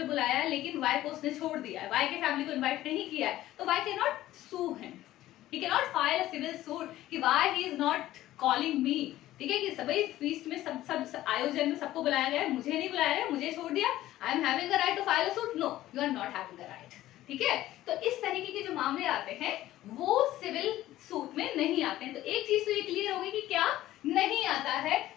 बुलाया है लेकिन वाई को उसने छोड़ दिया है, वाई के फैमिली को इनवाइट नहीं किया है, तो why can not sue him, he can not file a civil suit कि why he is not calling me. ठीक है, कि सभी फीस्ट में सब आयोजन में सबको बुलाया गया है, मुझे नहीं बुलाया गया, मुझे छोड़ दिया, I am having a right to file a suit, no you are not having a right. ठीक है, तो इस तरीके के जो मामले आते हैं वो सिविल सूट में नहीं आते हैं। तो एक चीज तो ये क्लियर होगी कि क्या नहीं आता है,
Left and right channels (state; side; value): quieter; right; 14.8 dB